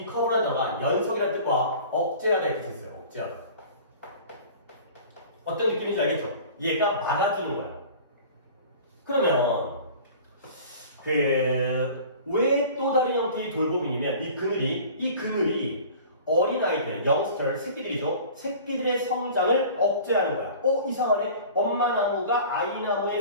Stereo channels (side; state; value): both; inverted; correlation -0.43